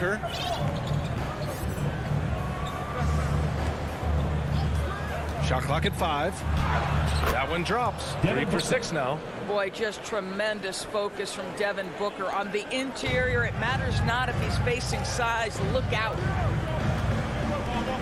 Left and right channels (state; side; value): identical; both; correlation 1.00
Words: Shot clock at 5. That one drops. 3 for 6 now. Boy, just tremendous focus from Devin Booker on the interior. It matters not if he's facing size. Look out.